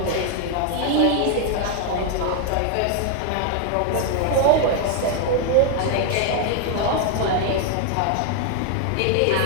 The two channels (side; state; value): both; different; correlation 0.00